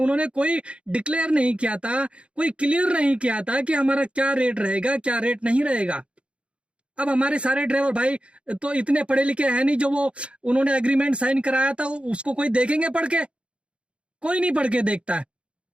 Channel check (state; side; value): late; left; 0.059 ms